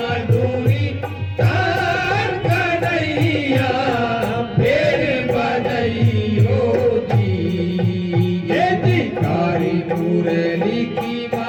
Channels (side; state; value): both; identical; correlation 1.00